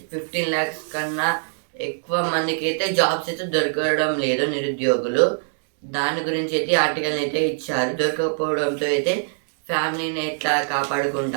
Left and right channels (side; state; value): left; silent; digital silence